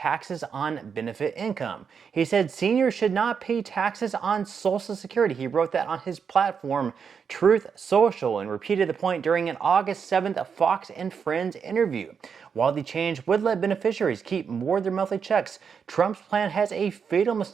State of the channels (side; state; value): left; quieter; 6.5 dB